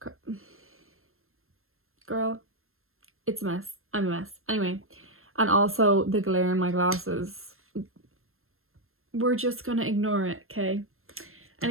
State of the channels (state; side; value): late; left; 0.61 ms